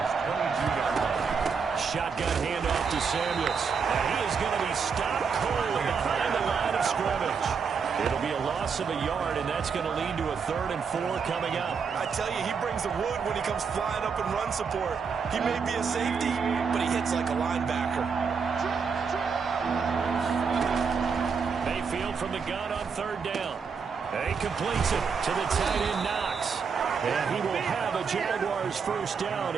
Shotgun handoff to Samuels. And he is going to be stopped cold behind the line of scrimmage. It'll be a loss of a yard, and that's going to lead to a 3rd and 4 coming up. I tell you, he brings the wood when he comes flying up in run support. He may be a safety, but he hits like a linebacker. Mayfield from the gun on 3rd down. And he completes it to the tight end, Knox. And he will have a Jaguars first down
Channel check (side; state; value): left; quieter; 5.8 dB